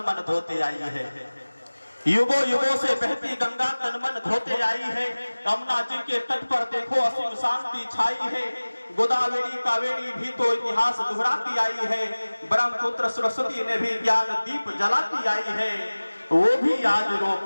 मन धोते आई है, युगों युगों से बहती गंगा तन मन धोते आई है, यमुना जी के तट पर देखो असीम शांति छाई है, गोदावरी कावेरी भी तो इतिहास दोहराती आई है, ब्रह्मपुत्र सरस्वती ने भी ज्ञान दीप जलाती आई है, वो भी आज रो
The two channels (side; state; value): both; inverted; correlation -1.00